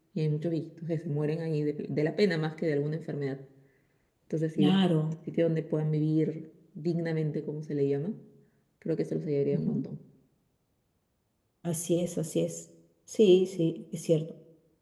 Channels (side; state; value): both; identical; correlation 1.00